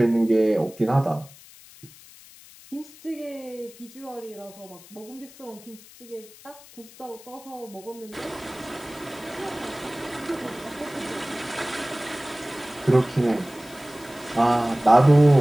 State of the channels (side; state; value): left; noise; hiss, 21 dB below the sound